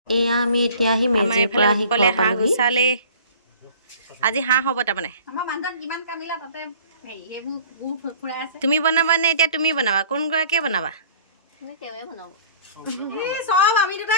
এয়া আমি এতিয়া আহি মেজিৰ পৰা আহি ঘৰ পালোহি। আজি হাঁহ হ'ব তাৰমানে। তুমি বনাবা নে এতিয়া তুমি বনাবা? কোন গৰাকীয়ে বনাবা?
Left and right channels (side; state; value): both; inverted; correlation -0.48